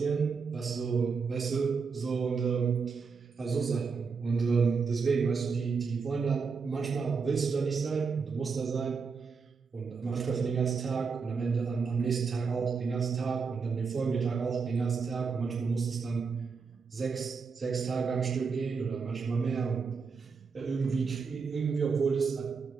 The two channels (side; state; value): left; quieter; 5.3 dB